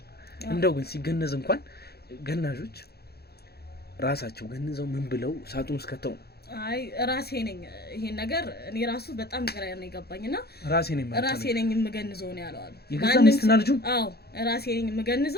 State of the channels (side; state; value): right; late; 0.46 ms